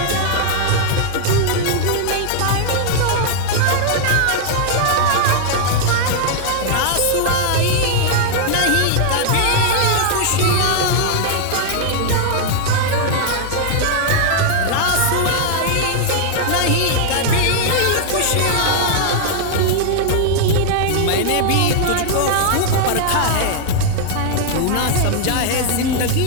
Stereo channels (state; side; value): different; both; correlation -0.01